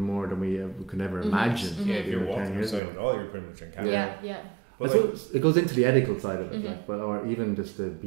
than we could ever Mhm. imagine. Mhm. Yeah, if you're 10 walking years outside ago. at all, you're pretty much on camera. Yeah. I But like, suppose it goes into the ethical side of it, Mhm. like, but or even just to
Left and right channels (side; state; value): left; drops out; at 2.8 s